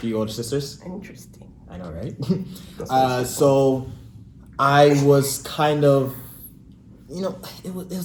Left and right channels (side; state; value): both; identical; correlation 1.00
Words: older sisters. Interesting. I know, right? So I was kind of you know,